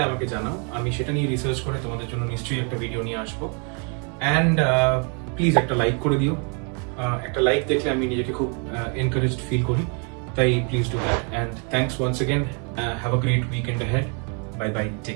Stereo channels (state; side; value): quieter; left; 38.1 dB